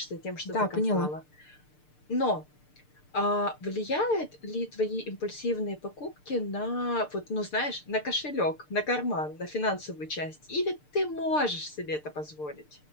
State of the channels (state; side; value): late; right; 6.7 ms